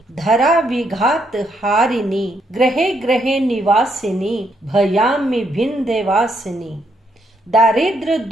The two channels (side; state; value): both; normal; correlation 0.75